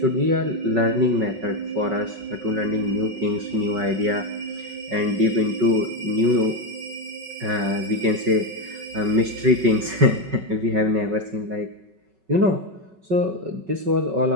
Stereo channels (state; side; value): late; left; 5.3 ms